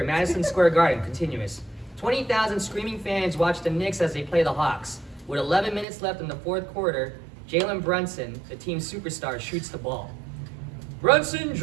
Madison Square Garden, continuous. 20,000 screaming fans watch the Knicks as they play the Hawks. With 11 minutes left in the fourth quarter, Jalen Brunson, the team's superstar, shoots the ball. Brunson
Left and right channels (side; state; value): left; drops out; at 5.9 s